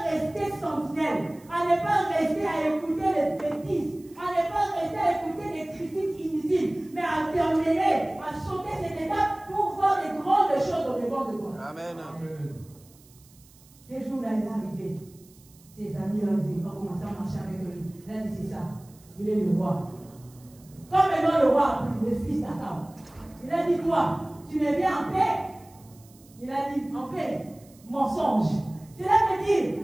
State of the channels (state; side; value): noise; right; hiss, 27 dB below the sound